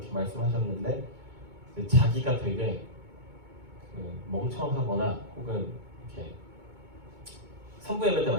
말씀하셨는데 자기가 되게 멍청하거나 혹은 이렇게 선부 예배 때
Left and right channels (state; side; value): late; left; 2.2 ms